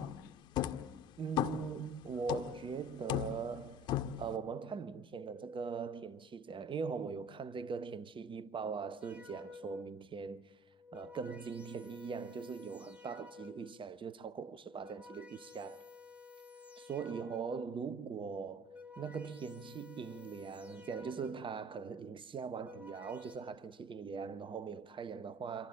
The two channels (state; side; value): normal; both; correlation 0.47